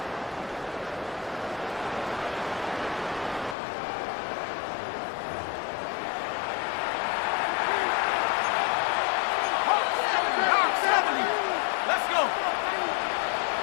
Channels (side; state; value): right; drops out; at 3.6 s